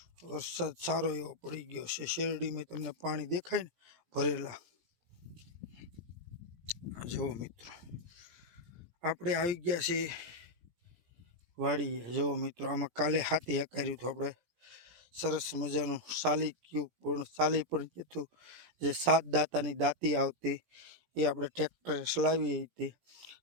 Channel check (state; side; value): late; left; 17 ms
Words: વરસાદ સારો એવો પડી ગયો છે. શેરડીમાં તમને પાણી દેખાય ને ભરેલા. જુઓ મિત્રો, આપણે આવી ગયા છીએ વાડીએ. જુઓ મિત્રો, આમાં કાલે હાથી હકાર્યું હતું આપણે. સરસ મજાનું સાલી પણ કીધું. જે 7 દાંતાની દાંતી આવતી એ આપણે ટ્રેક્ટરે ચલાવી હતી.